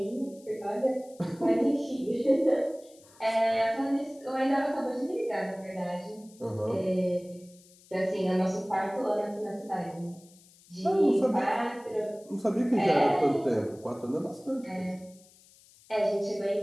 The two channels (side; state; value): left; noise; hiss, 26 dB below the sound